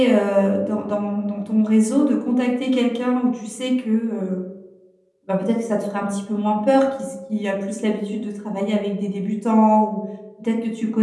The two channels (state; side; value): identical; both; correlation 1.00